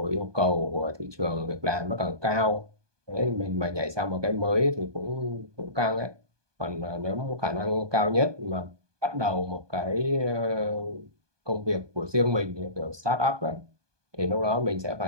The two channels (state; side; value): late; left; 1.2 ms